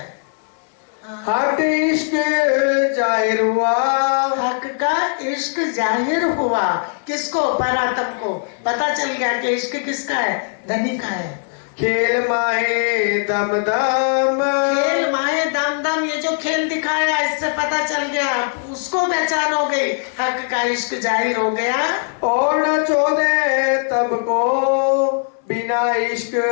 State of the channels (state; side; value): silent; right; 66 dB below the other